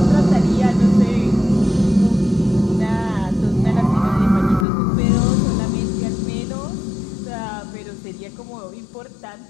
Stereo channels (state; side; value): drops out; right; at 4.7 s